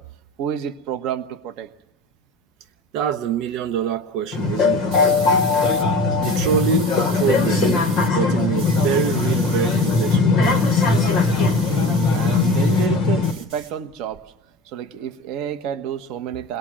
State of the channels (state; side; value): normal; both; correlation 0.34